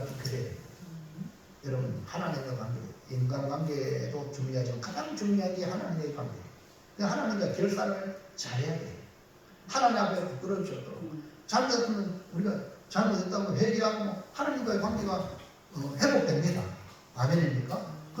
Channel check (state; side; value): identical; both; correlation 1.00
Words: 깨끗해요. 여러분, 하나님과의 관계, 인간관계도 중요하지만 가장 중요한 게 하나님과의 관계. 하나님과 결산을 잘해야 돼요. 하나님 앞에 부끄러워져. 잘못했으면 우리가 잘못했다고 회개하고 하나님과의 관계가 회복됩니다. 아멘입니까?